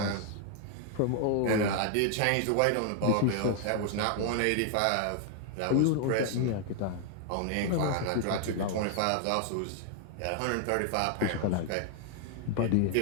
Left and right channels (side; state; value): both; different; correlation 0.00